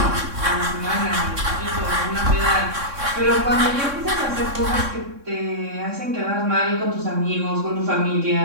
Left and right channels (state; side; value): late; left; 3.6 ms